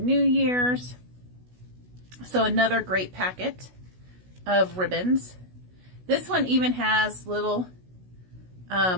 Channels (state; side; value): late; left; 16 ms